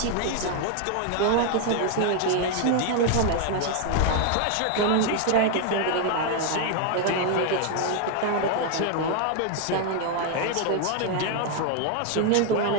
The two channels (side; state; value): both; different; correlation 0.00